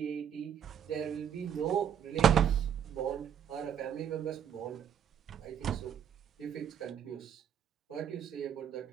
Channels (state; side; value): quieter; left; 8.8 dB